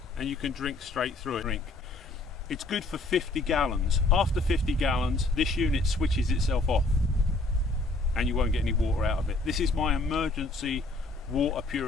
and you can drink straight through it. It's good for 50 gallons. After 50 gallons, this unit switches itself off and you won't get any water out of it. This is my emergency water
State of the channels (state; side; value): quieter; right; 3.1 dB